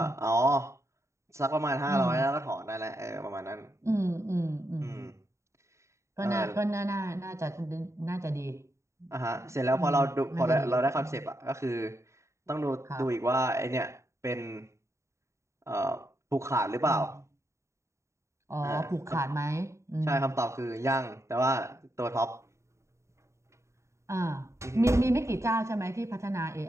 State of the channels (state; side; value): late; left; 0.14 ms